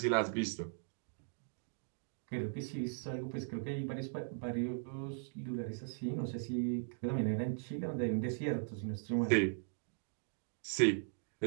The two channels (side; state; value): left; silent; digital silence